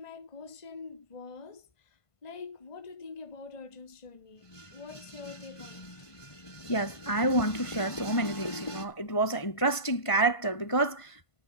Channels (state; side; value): late; right; 1.5 ms